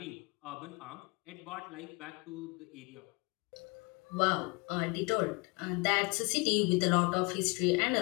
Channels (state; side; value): quieter; right; 29.1 dB